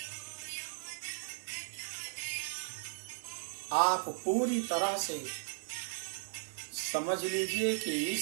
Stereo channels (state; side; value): silent; left; 53 dB below the other